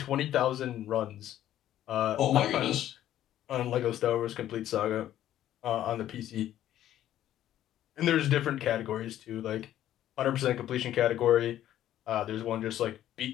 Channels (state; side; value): quieter; right; 12.2 dB